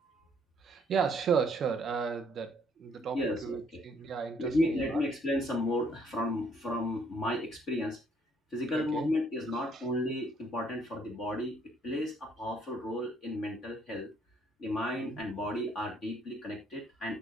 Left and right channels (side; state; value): both; normal; correlation 0.65